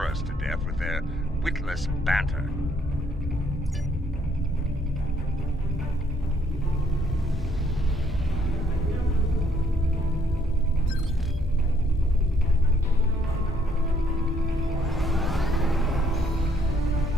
us to death with their witless banter.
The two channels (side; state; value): both; normal; correlation 0.68